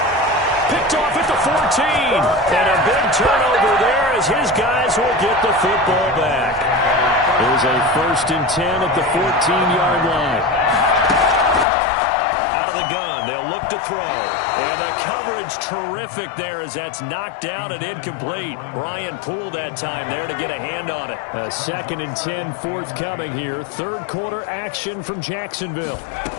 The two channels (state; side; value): drops out; right; at 11.7 s